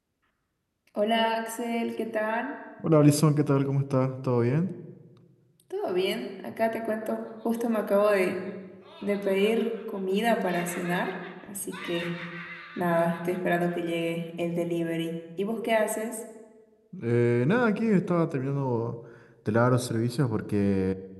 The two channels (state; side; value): identical; both; correlation 1.00